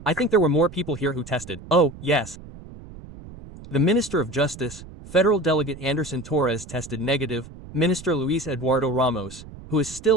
I think there were more people here who tested. Oh, yes. The Minister of Justice, Federal Delegate Anderson Torres tested negative, Minister Luis Eduardo Ramos, who is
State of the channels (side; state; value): right; noise; rumble, 16 dB below the sound